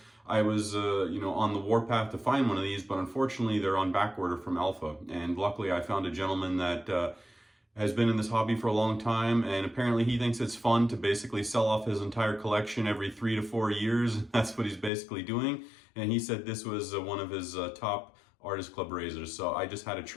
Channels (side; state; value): right; drops out; at 14.9 s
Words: I was on the warpath to find one of these, but unfortunately they're on back order from Alpha. And luckily I found a gentleman that has been in this hobby for a long time, and apparently he thinks it's fun to basically sell off his entire collection every 3 to 4 years. That's what he's basically doing, and he said this was one of his top Artist Club razors, so I just had to